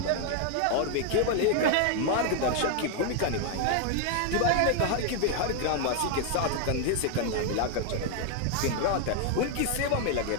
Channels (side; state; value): both; different; correlation 0.00